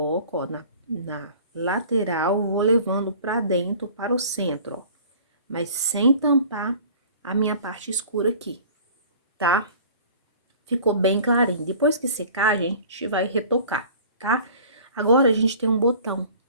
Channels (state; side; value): inverted; both; correlation -0.47